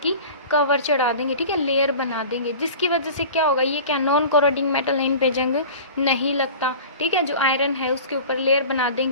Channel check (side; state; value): both; inverted; correlation -0.38